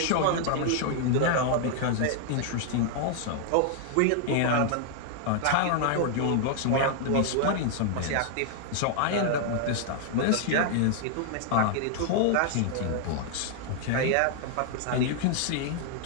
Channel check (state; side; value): different; both; correlation 0.00